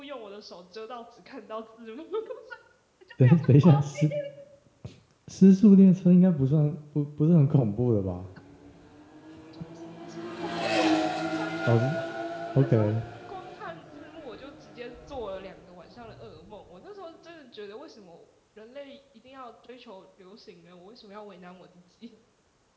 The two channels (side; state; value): both; identical; correlation 1.00